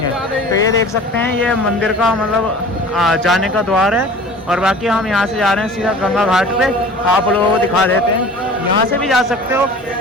तो ये देख सकते हैं ये मंदिर का मतलब जाने का द्वार है, और बाकी हम यहाँ से जा रहे हैं सीधा गंगा घाट पे। आप लोगों को दिखा देते हैं, यहाँ से भी जा सकते हो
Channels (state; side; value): normal; both; correlation 0.42